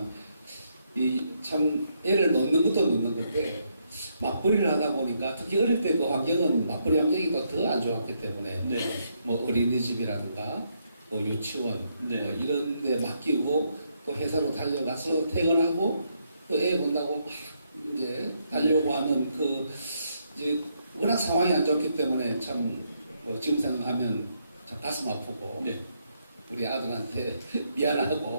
이 참 애를 놓는 것도 놓는 건데 맞벌이를 하다 보니까 특히 어릴 때 그 환경은 맞벌이 환경이 더 안 좋았기 때문에 네. 뭐 어린이집이라든가 뭐 유치원 네. 뭐 이런 데 맡기고 또 회사로 달려가서 퇴근하고 또 애 본다고 막 이제 달려고 하는 그 이제 워낙 상황이 안 좋기 때문에 참 뭐 지금 생각하면 참 가슴 아프고 네. 우리 아들한테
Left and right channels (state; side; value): inverted; both; correlation -0.76